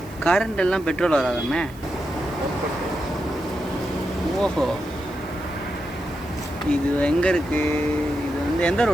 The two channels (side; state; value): right; noise; hiss, 24 dB below the sound